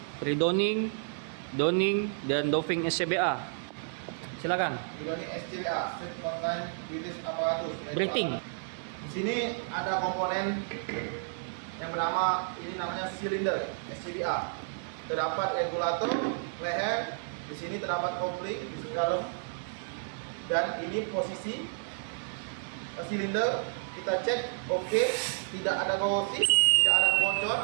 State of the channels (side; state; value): left; silent; digital silence